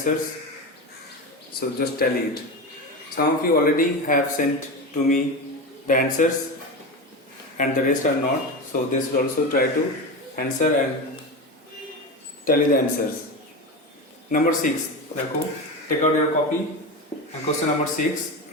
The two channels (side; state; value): both; normal; correlation 0.22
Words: So just tally it. Some of you already have sent to me the answers and the rest are not. So they should also try to answer and tally the answers. Number 6. Take out your copy and question number 6.